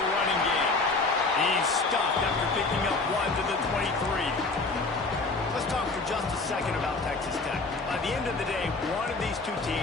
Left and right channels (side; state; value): right; quieter; 3.6 dB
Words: game. He's stopped after picking up 1 to the 23. Let's talk for just a second about Texas Tech. By the end of the day, one of these two